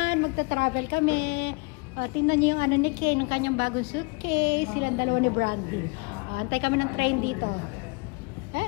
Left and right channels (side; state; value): right; quieter; 30.9 dB